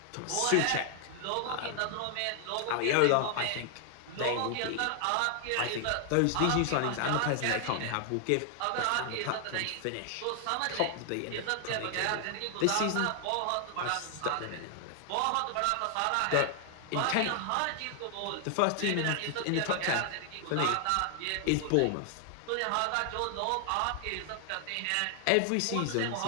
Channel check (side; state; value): both; different; correlation 0.00